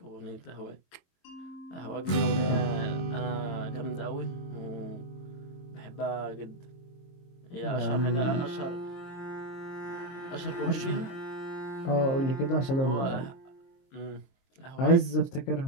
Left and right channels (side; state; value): right; late; 23 ms